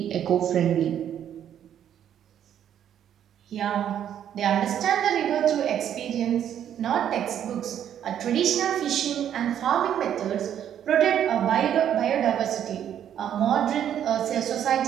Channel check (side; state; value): left; quieter; 9.9 dB